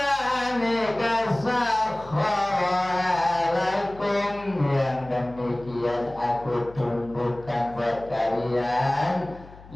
sakhkhara lakum, yang demikian aku tundukkan buat kalian,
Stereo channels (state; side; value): noise; left; hum, 20 dB below the sound